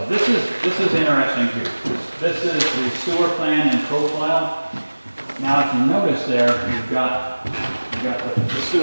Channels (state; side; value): inverted; both; correlation -1.00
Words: this is interesting here. This is the sewer plan and profile. Now, if you notice there, you've got the